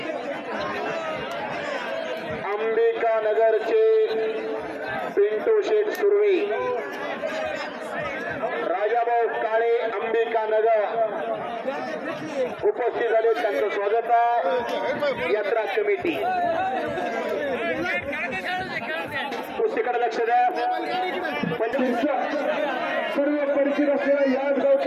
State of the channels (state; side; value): identical; both; correlation 1.00